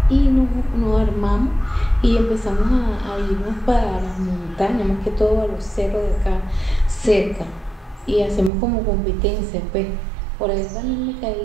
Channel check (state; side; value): drops out; left; at 8.5 s